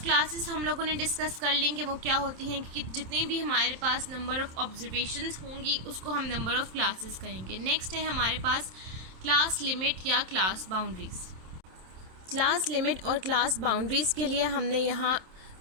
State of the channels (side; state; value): left; late; 27 ms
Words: क्लासेस। हम लोगों ने डिस्कस कर लेंगे वो क्या होती हैं, कि जितनी भी हमारे पास नंबर ऑफ़ ऑब्जर्वेशंस होंगी उसको हम नंबर ऑफ़ क्लासेस कहेंगे। नेक्स्ट है हमारे पास क्लास लिमिट या क्लास बाउंड्रीज़। क्लास लिमिट और क्लास बाउंड्रीज़ के लिए हमने यहाँ